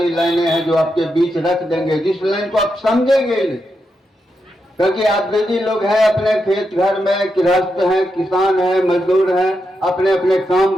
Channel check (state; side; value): normal; both; correlation 0.85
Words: लाइनें हैं जो आपके बीच रख देंगे, जिस लाइन को आप समझेंगे नहीं, क्योंकि आप बेदी लोग हैं, अपने खेत घर में गृहस्थ हैं, किसान हैं, मजदूर हैं, अपने अपने काम